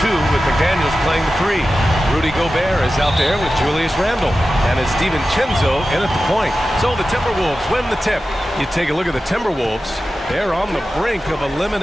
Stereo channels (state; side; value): normal; both; correlation 0.93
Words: 2 with McDaniels playing the 3. Rudy Gobert is out there with Julius Randle. And it's DiVincenzo in at the point. So the Timberwolves win the tip. You take a look at the Timberwolves. They're on the brink of